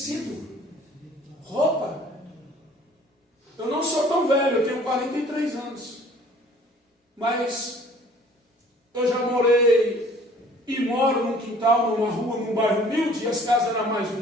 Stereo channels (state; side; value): normal; both; correlation 0.53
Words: Roupa. Eu não sou tão velho, eu tenho 43 anos. Mas eu já morei e moro num quintal, numa rua, num bairro humilde, e as casas eram mais